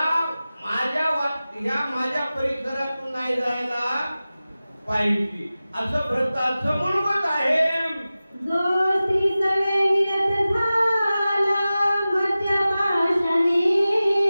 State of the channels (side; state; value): both; inverted; correlation -0.96